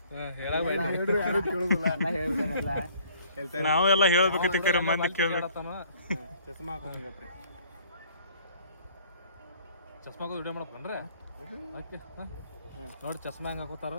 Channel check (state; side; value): inverted; both; correlation -0.57